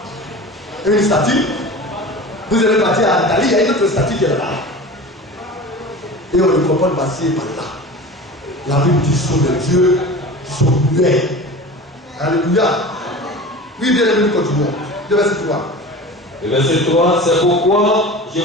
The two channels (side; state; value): both; normal; correlation 0.35